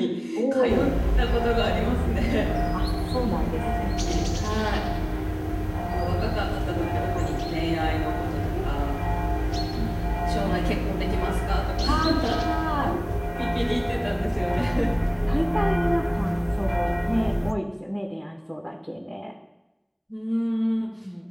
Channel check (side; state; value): both; identical; correlation 1.00